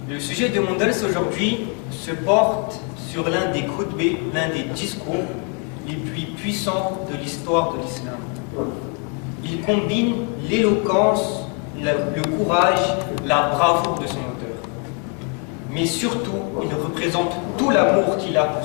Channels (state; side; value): quieter; right; 38.8 dB